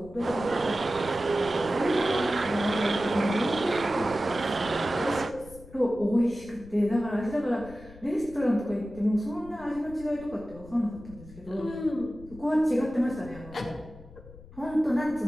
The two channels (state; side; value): noise; left; rumble, 19 dB below the sound